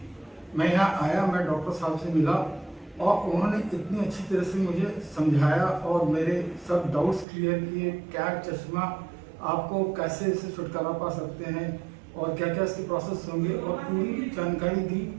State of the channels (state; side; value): drops out; left; at 7.2 s